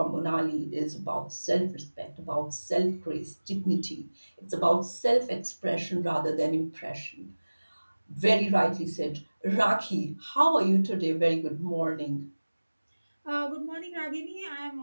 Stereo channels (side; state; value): both; inverted; correlation -1.00